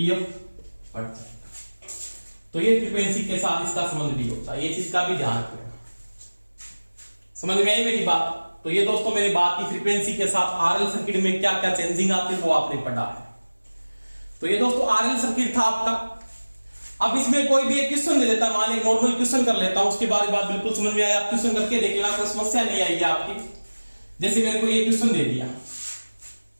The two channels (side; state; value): both; inverted; correlation -1.00